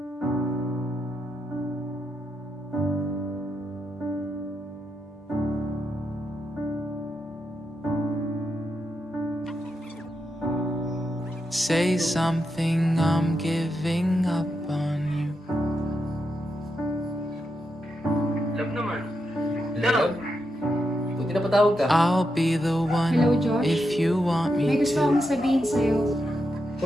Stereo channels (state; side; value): normal; both; correlation 0.85